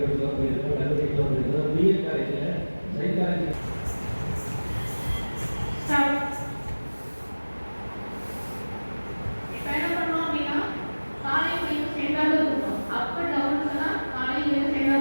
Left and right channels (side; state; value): both; inverted; correlation -1.00